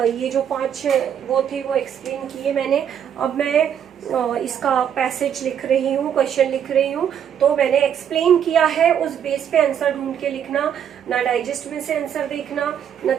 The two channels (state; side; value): quieter; left; 8.8 dB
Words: जो 5 वो थे वो एक्सप्लेन किए मैंने। अब मैं इसका पैसेज लिख रही हूँ, क्वेश्चन लिख रही हूँ। तो मैंने एक्सप्लेन किया है, उस बेस पे आंसर ढूंढ के लिखना, ना डाइजेस्ट में से आंसर देखना, ना